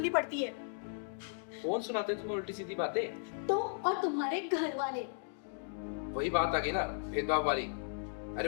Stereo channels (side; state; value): right; silent; digital silence